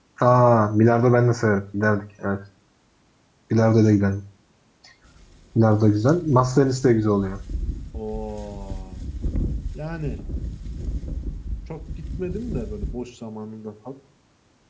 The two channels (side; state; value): both; identical; correlation 1.00